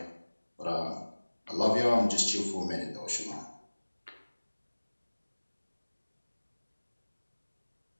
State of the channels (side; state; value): both; inverted; correlation -1.00